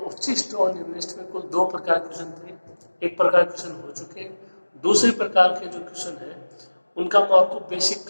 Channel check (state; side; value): inverted; both; correlation -1.00